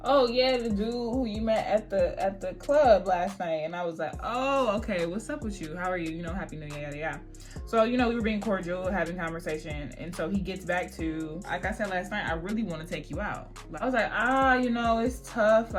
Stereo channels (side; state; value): both; identical; correlation 1.00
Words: oh yeah, the dude who you met at the club last night. And I was like, oh, okay, what's up with you? How are you? You know, happy new year, yada yada. So, you know, we were being cordial, having conversation. And so he gets back to, like I said last night, I really want to take you out. I was like, you know, it's tough.